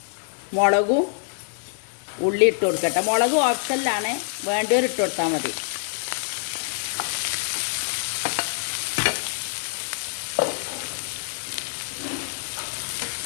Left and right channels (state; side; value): silent; right; 62 dB below the other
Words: മുളകും ഉള്ളി ഇട്ട് കൊടുക്കട്ടെ. മുളക് ഓപ്ഷനിലാണ്, വേണ്ടവർ ഇട്ട് കൊടുത്താൽ മതി.